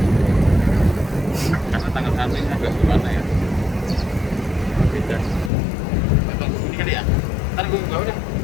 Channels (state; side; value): drops out; right; at 5.5 s